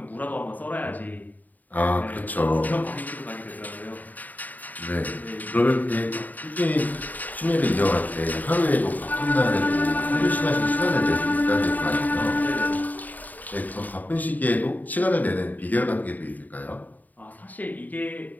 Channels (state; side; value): late; right; 0.081 ms